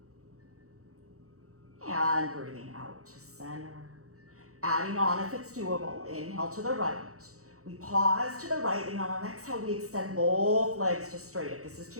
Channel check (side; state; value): left; late; 0.65 ms